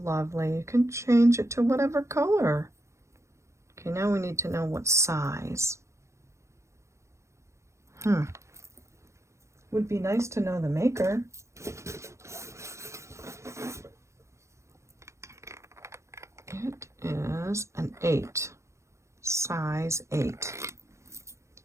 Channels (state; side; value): late; left; 0.14 ms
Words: lovely. You can change it to whatever color. Okay, now we need to know what size. Would be nice to know the maker. It is an 8, size 8.